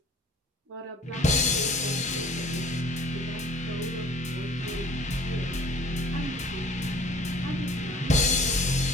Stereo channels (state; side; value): normal; both; correlation 0.50